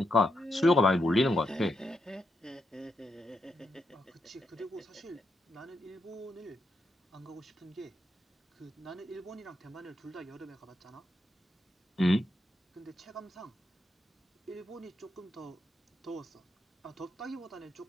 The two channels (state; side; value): normal; both; correlation 0.82